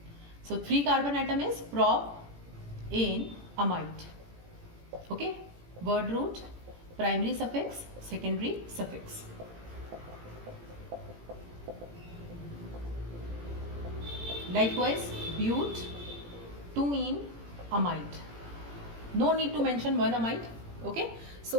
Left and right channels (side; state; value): left; late; 18 ms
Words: So 3 carbon atom is prop-ane amide. Okay, word root, primary suffix, secondary suffix. Likewise, but 2-ene amide. No need to mention one amide. Okay,